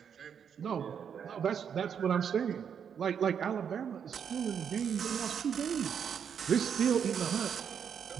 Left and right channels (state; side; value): quieter; left; 7.7 dB